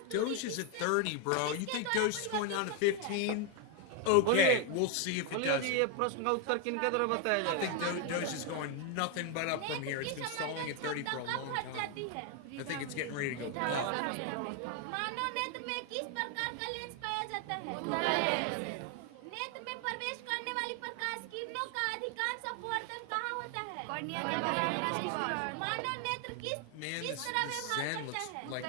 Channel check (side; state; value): both; different; correlation 0.01